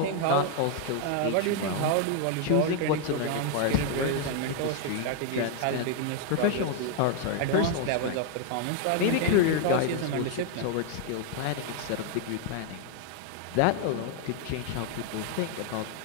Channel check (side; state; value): both; different; correlation 0.00